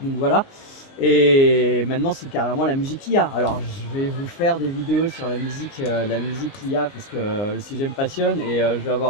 voilà. Et maintenant, c'est carrément la musique IA. Alors, je vais vous faire des vidéos sur la musique IA, parce que le sujet me passionne, et je vais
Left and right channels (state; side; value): late; right; 19 ms